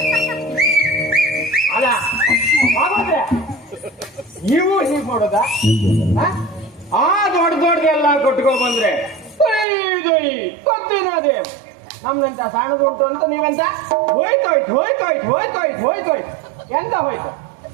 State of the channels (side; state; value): left; drops out; at 9.7 s